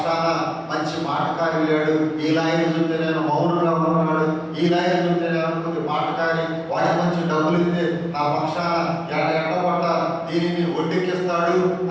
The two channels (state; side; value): identical; both; correlation 1.00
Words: మంచి మాటకారి లేడు, ఈ లాయర్ చూస్తే నేను మౌనంగా ఉన్నాడు, ఈ లాయర్ చూస్తే నేను కొద్ది మాటకారి, వాడికి మంచి డబ్బులు ఇస్తే నా పక్షాన ఎట్టబట్ట దీనిని ఒడ్డెక్కిస్తాడు